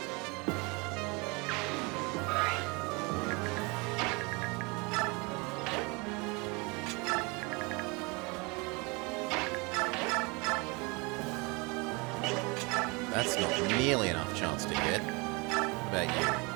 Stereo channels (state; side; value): quieter; left; 28.2 dB